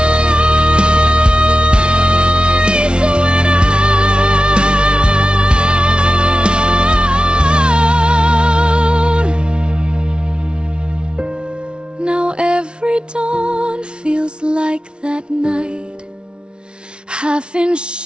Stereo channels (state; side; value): late; left; 0.056 ms